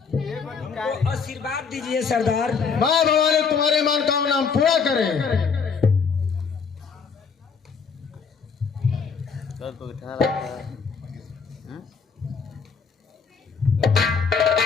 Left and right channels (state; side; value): quieter; right; 5.7 dB